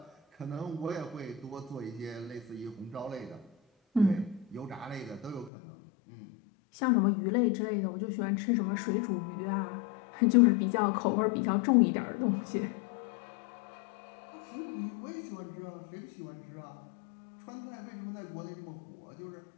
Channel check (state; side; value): drops out; right; at 5.5 s